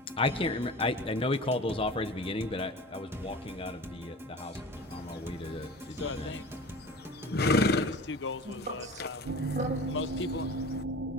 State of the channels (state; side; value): normal; both; correlation 0.37